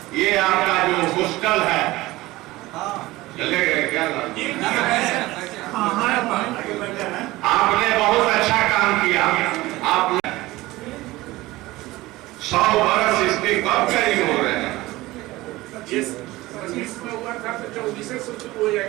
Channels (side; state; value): left; quieter; 18.9 dB